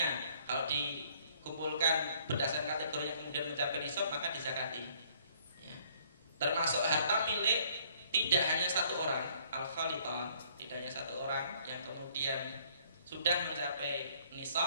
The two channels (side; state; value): both; inverted; correlation -0.62